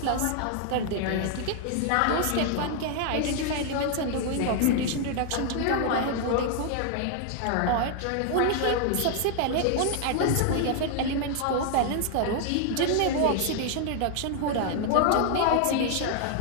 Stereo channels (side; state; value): both; different; correlation 0.00